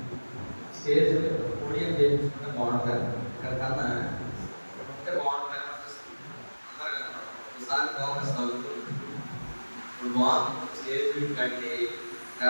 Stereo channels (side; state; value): both; inverted; correlation -1.00